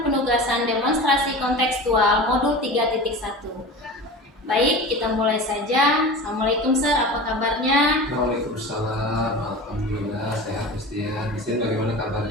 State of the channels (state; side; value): normal; both; correlation 0.33